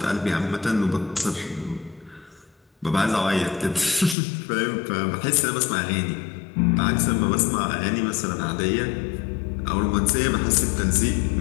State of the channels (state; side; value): drops out; right; at 4.2 s